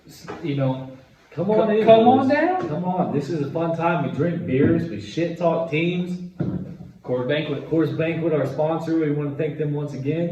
you know, Come on in. come on boys. down. Come on. This is a fun time. We drink beers. We shit talk teams. Coors Banquet, Coors Banquet, our sponsor. We want to thank them once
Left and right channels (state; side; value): identical; both; correlation 1.00